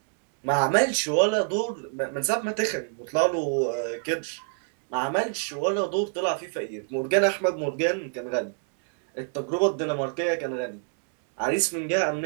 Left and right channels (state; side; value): silent; left; 57 dB below the other